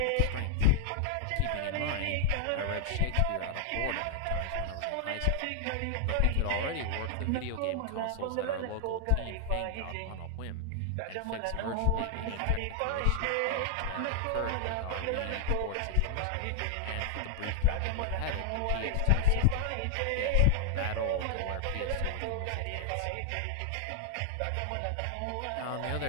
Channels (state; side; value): different; both; correlation 0.00